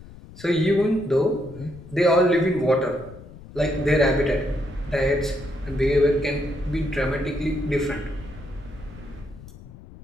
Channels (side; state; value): left; noise; rumble, 18 dB below the sound